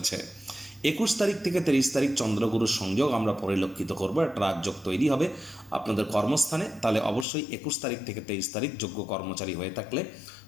21 তারিখ থেকে 30 তারিখ চন্দ্রগুরুর সংযোগ আমরা পরিলক্ষিত করব। একটা রাজযোগ তৈরি হবে আপনাদের কর্মস্থানে। তাহলে অবশ্যই 21 তারিখ থেকে 23 তারিখ যোগ্য কর্মচারী হয়ে থাকলে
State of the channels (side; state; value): right; drops out; at 7.2 s